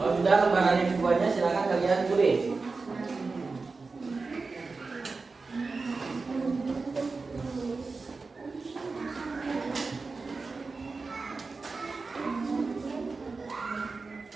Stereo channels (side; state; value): left; quieter; 4.1 dB